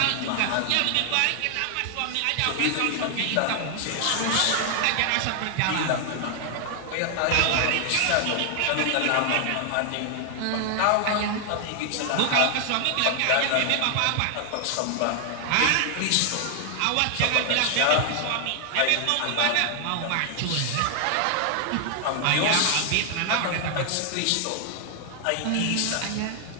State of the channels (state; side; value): different; both; correlation 0.00